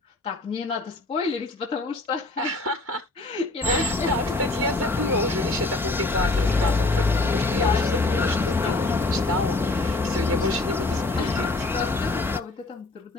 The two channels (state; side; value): quieter; right; 3.0 dB